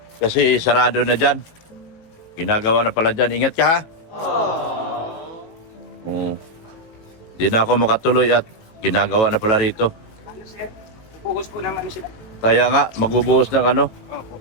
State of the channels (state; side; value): late; right; 18 ms